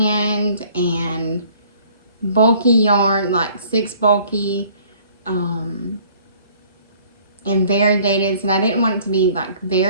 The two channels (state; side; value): inverted; both; correlation -0.56